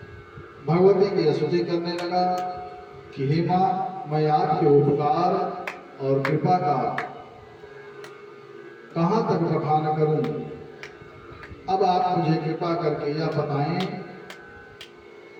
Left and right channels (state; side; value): identical; both; correlation 1.00